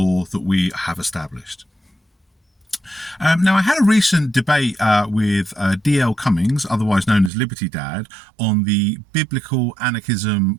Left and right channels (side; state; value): left; drops out; at 7.3 s